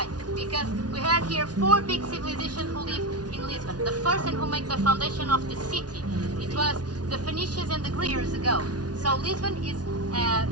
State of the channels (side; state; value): left; late; 0.69 ms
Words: Because we had here 4 big civilizations who live in Lisbon. The first and who made the foundation of the city, it was the Phoenicians and the Greeks years ago. So Lisbon is